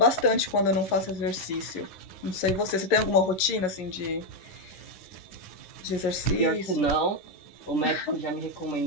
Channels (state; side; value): late; right; 11 ms